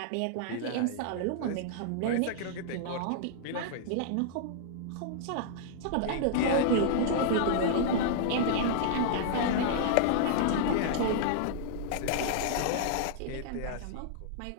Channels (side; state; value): both; different; correlation -0.01